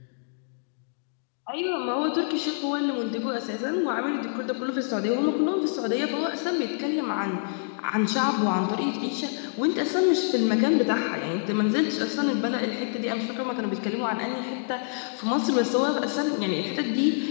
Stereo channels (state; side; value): silent; right; digital silence